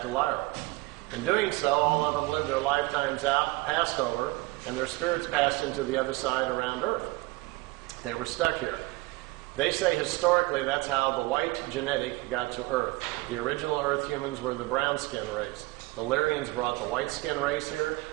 to Lyra. In doing so, all of them lived their lifetimes out, passed over, and their spirits passed into the other side around Earth. They were stuck here. They say historically that's how the white genetic got to Earth. The original Earth humans were the brown skin race. The Lyrians brought the white skin race here.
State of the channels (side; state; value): left; quieter; 21.8 dB